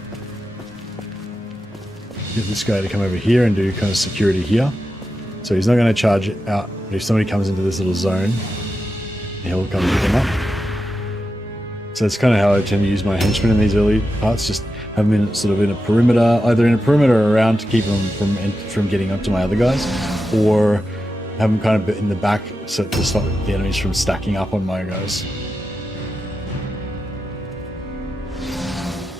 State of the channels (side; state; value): both; normal; correlation 0.90